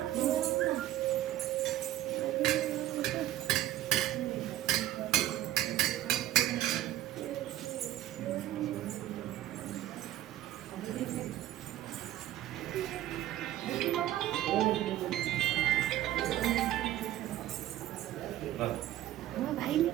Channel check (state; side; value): quieter; left; 13.7 dB